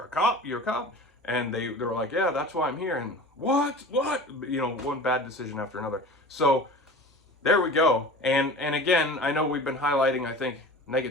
a cop, and they were like, yeah, that's why I'm here, and what, one bad decision after another. So there we go. And again, I know we've been highlighting, I think,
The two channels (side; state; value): both; normal; correlation 0.37